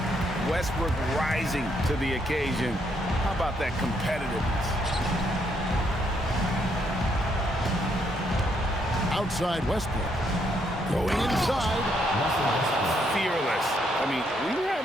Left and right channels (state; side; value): normal; both; correlation 0.74